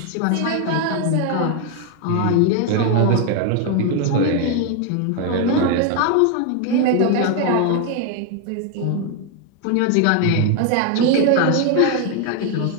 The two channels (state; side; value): different; both; correlation 0.01